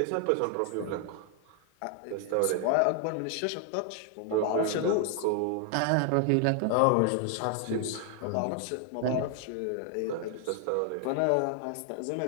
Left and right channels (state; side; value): different; both; correlation 0.00